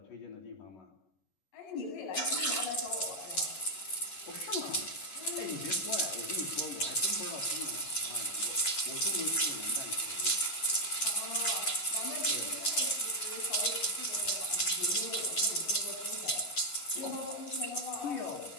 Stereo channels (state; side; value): late; right; 11 ms